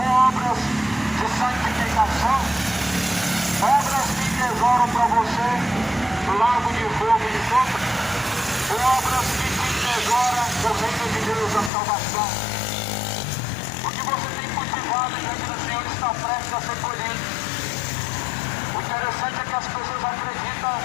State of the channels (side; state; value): right; drops out; at 11.7 s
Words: obras de santificação? Obras que tesouram para você o lago de fogo e de enxofre? Ou obras que te tesouram o reino de Deus, a salvação? O que você tem cultivado diante do Senhor está prestes a ser colhido. O interessante é que as pessoas acreditam